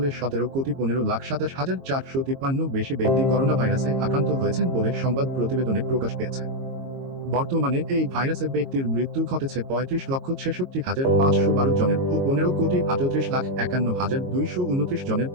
17,15,27,453 বেশি ব্যক্তি করোনা ভাইরাসে আক্রান্ত হয়েছেন বলে সংবাদ প্রতিবেদনে প্রকাশ পেয়েছে। বর্তমানে এই ভাইরাসে ব্যক্তির মৃত্যু ঘটেছে 35,66,512 জনের ও 15,38,51,229 জনের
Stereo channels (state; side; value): late; left; 22 ms